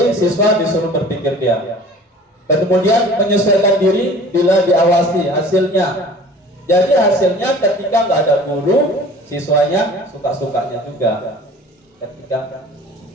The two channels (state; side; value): normal; both; correlation 0.45